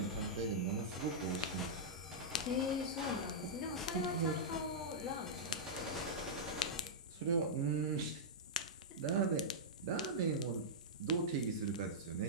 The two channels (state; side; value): normal; both; correlation -0.11